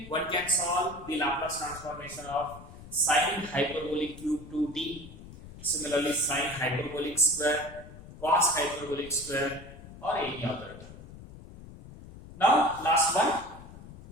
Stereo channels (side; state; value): left; noise; rumble, 16 dB below the sound